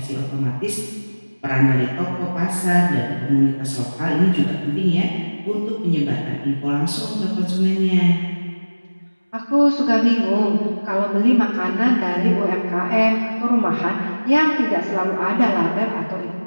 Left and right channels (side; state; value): both; inverted; correlation -1.00